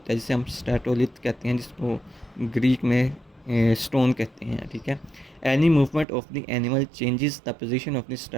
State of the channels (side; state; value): left; drops out; at 6.1 s